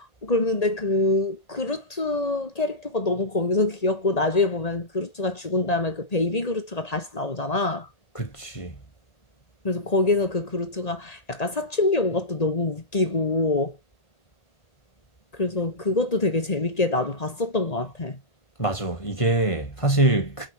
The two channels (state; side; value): late; right; 1.8 ms